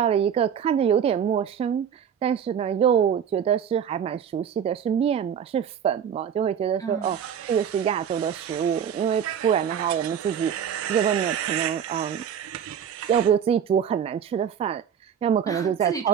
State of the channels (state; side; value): quieter; left; 8.3 dB